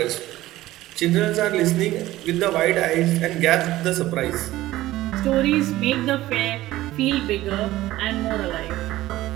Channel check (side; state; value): left; quieter; 16.1 dB